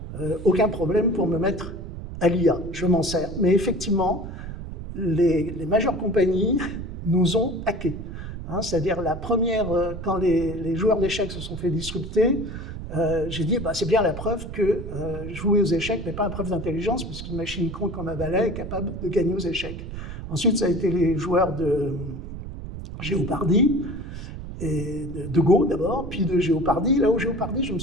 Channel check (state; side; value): noise; right; rumble, 9 dB below the sound